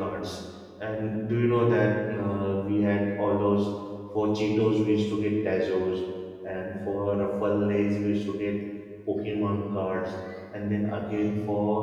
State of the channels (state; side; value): identical; both; correlation 1.00